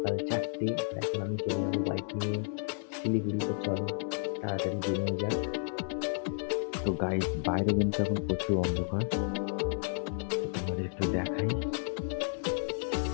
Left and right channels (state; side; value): silent; right; 56 dB below the other